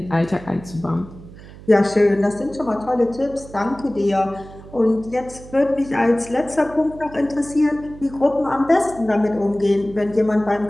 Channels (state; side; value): noise; right; hum, 18 dB below the sound